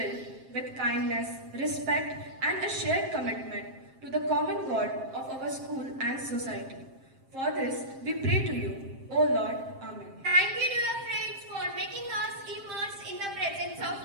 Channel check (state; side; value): late; left; 7.5 ms